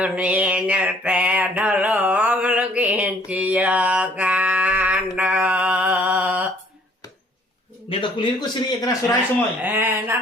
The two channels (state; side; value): normal; both; correlation 0.59